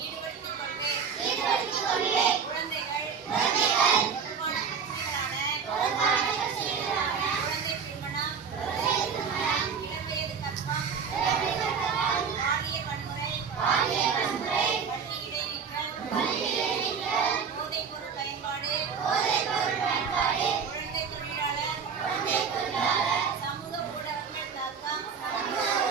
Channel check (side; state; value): left; quieter; 6.3 dB